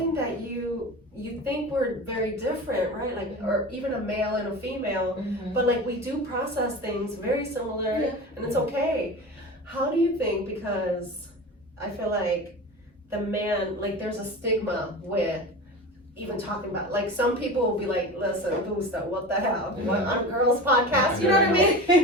that you think we're very different, right? Like, or even a male and a female, but like we do process things very similar, and it's okay. How do you think, because I feel like the man, like there's a stigma with even talking about, like some people will be like, listen, Gusta, what the hell? What, on a girls podcast, you know what I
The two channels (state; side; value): normal; both; correlation 0.31